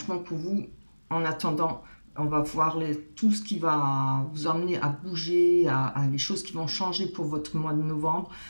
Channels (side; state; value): both; inverted; correlation -1.00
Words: pour vous, en attendant, on va voir tout ce qui va vous emmener à bouger, à les choses qui vont changer pour votre mois de novembre,